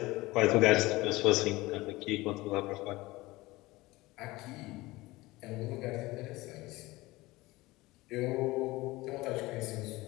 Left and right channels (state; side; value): quieter; right; 20.2 dB